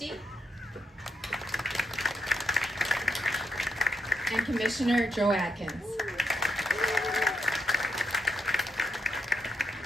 and Commissioner Joe Atkins.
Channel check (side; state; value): both; normal; correlation 0.81